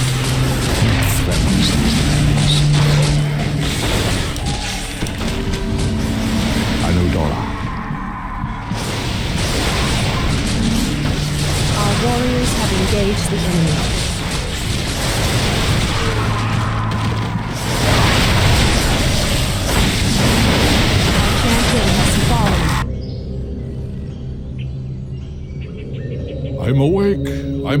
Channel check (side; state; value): both; identical; correlation 1.00